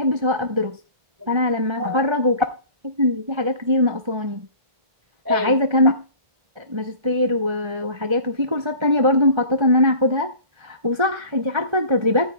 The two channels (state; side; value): late; left; 1.3 ms